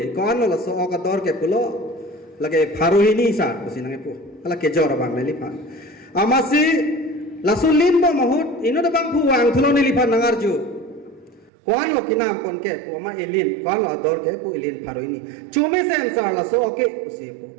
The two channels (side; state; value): left; drops out; at 11.5 s